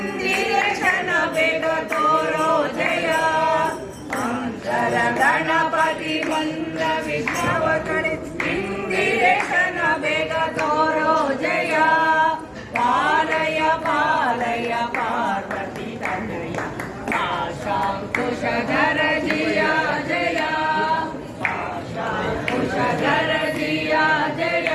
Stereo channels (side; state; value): both; identical; correlation 1.00